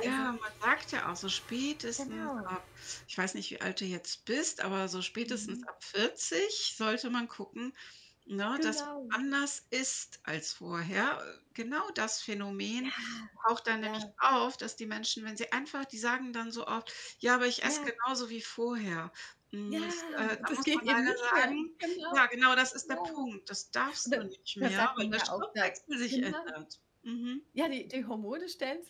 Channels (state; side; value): identical; both; correlation 1.00